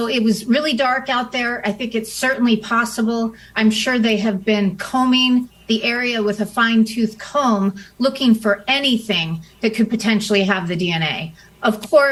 it was really dark out there. I think it's certainly possible. I'm sure they have been combing the area with a fine-tooth comb, looking for anything that could potentially have the DNA. Of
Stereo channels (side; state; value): both; identical; correlation 1.00